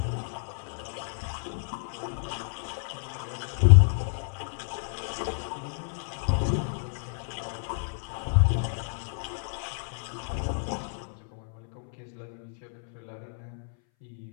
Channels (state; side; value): silent; right; 58 dB below the other